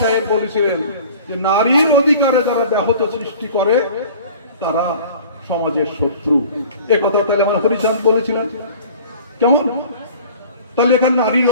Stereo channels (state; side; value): inverted; both; correlation -0.45